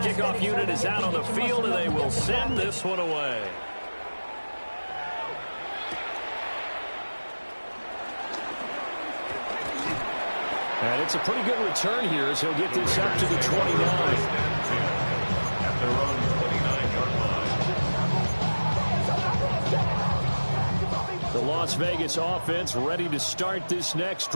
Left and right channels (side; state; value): both; inverted; correlation -1.00